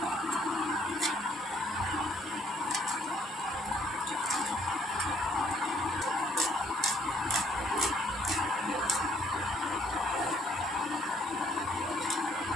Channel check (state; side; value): normal; both; correlation 0.65